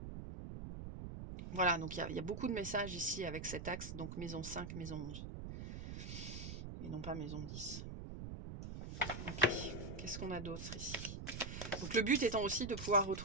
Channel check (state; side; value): noise; right; rumble, 7 dB below the sound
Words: Voilà, donc il y a beaucoup de messages ici avec cet axe, donc maison 5, maison 11 et non pas maison 10. OK. Qu'est-ce qu'on a d'autre ici? Donc le but étant aussi de pouvoir